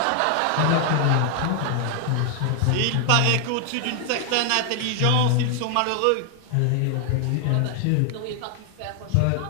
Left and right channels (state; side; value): different; both; correlation 0.00